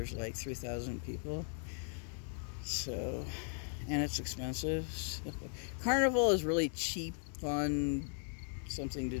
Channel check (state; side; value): silent; right; 53 dB below the other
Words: like 3,000 people. So, and it's expensive. So, Carnival is really cheap, fun, something to